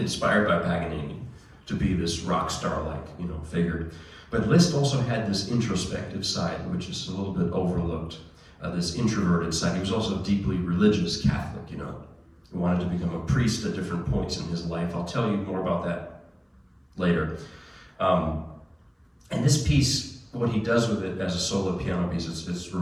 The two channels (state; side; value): identical; both; correlation 1.00